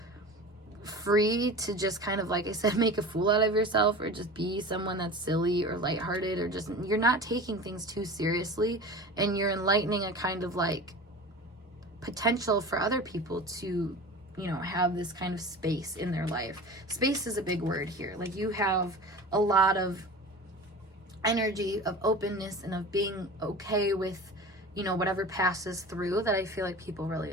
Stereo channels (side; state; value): both; normal; correlation 0.35